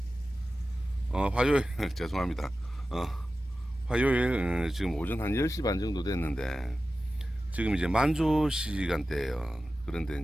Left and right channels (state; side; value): normal; both; correlation 0.94